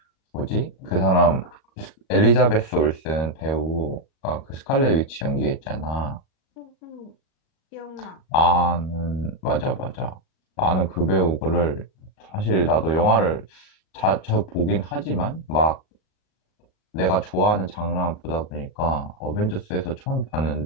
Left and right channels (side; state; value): right; late; 37 ms